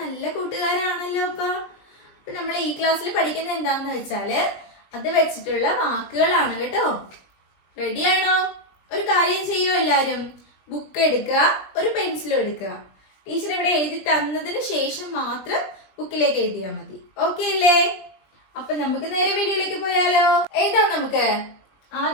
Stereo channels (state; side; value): late; right; 20 ms